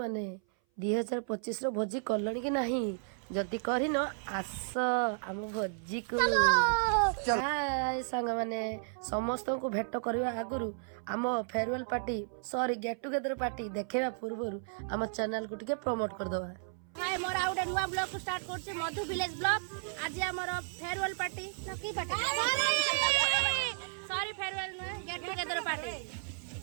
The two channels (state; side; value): silent; left; 56 dB below the other